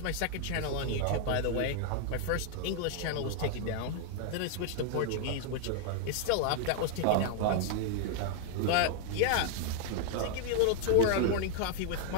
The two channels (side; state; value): both; different; correlation 0.00